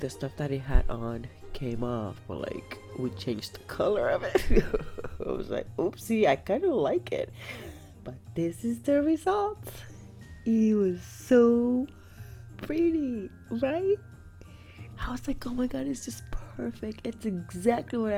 stuff that it had on came off, but like we changed the color of it. I was like, oopsie, I kind of like it, but this is the result. It was so pretty, right? I was like, oh my god, it's just perfect. It's exactly what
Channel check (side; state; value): both; identical; correlation 1.00